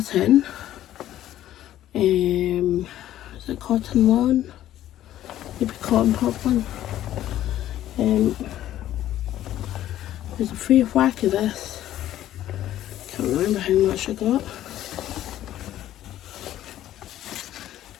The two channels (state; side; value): quieter; right; 12.8 dB